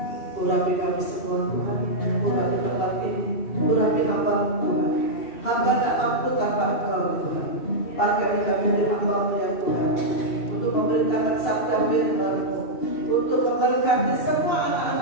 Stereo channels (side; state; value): right; late; 2.7 ms